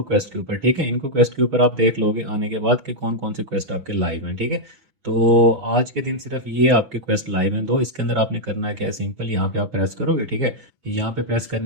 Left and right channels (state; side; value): late; left; 6.1 ms